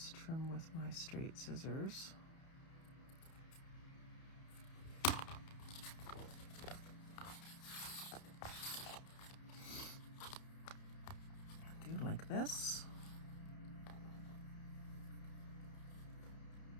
Trim with my straight scissors. Do like this.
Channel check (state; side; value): late; right; 31 ms